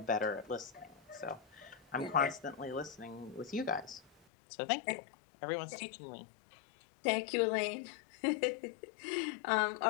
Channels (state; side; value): drops out; right; at 4.1 s